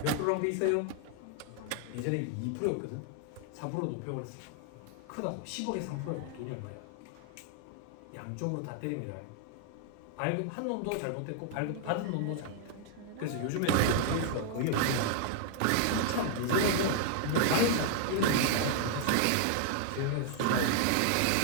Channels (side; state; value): both; different; correlation 0.00